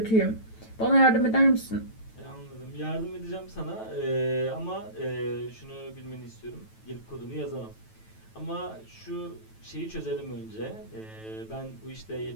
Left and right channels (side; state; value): right; late; 9.1 ms